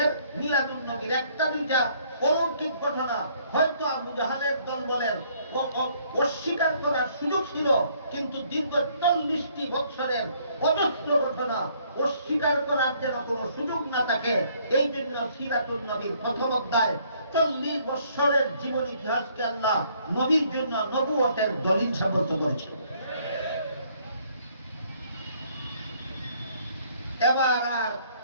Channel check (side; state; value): both; inverted; correlation -0.64